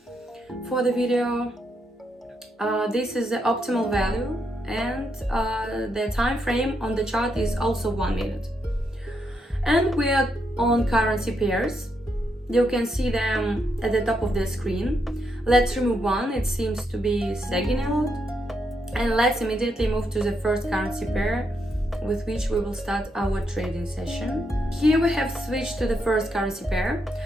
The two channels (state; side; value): normal; both; correlation 0.80